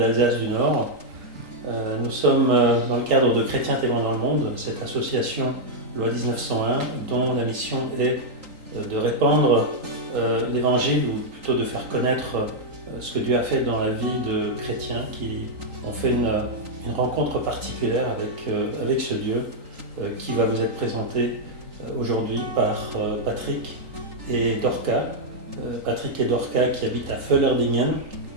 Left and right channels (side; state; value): left; late; 3.8 ms